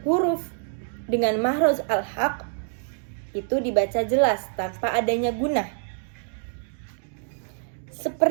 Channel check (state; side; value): silent; left; digital silence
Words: huruf dengan makhraj al-haq itu dibaca jelas tanpa adanya gunah.